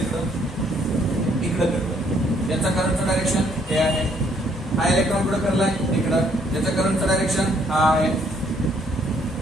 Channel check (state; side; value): normal; both; correlation 0.67